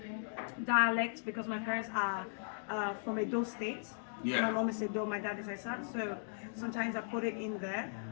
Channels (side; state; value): right; silent; digital silence